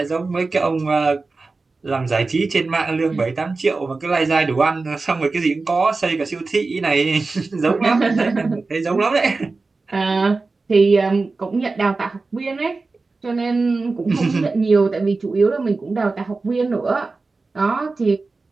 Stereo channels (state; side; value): quieter; left; 3.8 dB